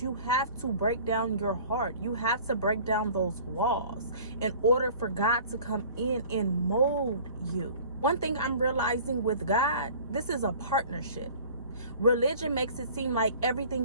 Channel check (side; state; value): both; inverted; correlation -0.46